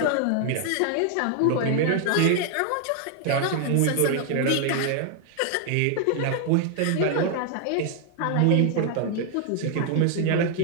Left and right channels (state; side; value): different; both; correlation 0.00